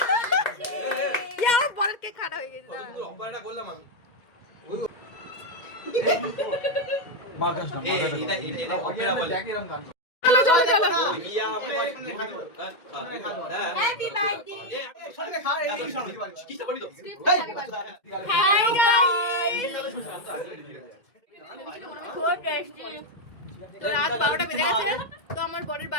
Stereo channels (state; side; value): late; right; 2.1 ms